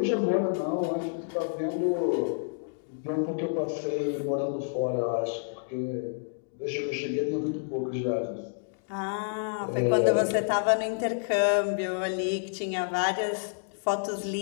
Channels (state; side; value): silent; right; digital silence